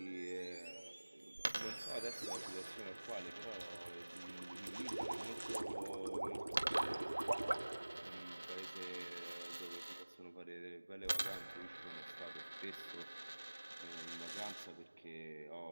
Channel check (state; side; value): inverted; both; correlation -1.00